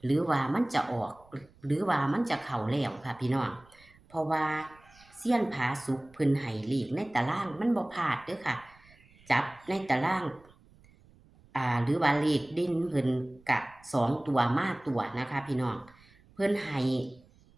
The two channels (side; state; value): right; noise; rumble, 28 dB below the sound